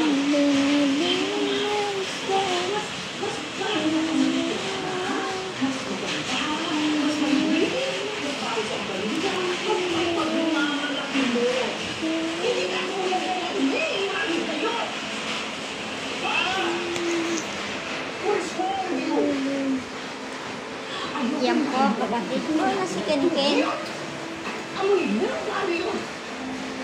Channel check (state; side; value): identical; both; correlation 1.00